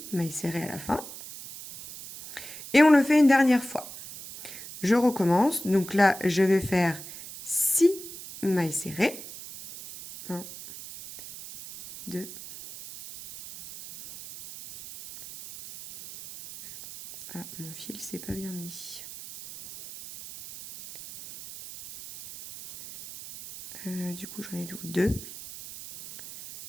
mailles serrées à la fin. Et on le fait une dernière fois. Je recommence. Donc là, je vais faire 6 mailles serrées. 1, 2, ah, mon fil s'est pas bien mis. Du coup, j'en ai 2,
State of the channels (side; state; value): right; noise; hiss, 13 dB below the sound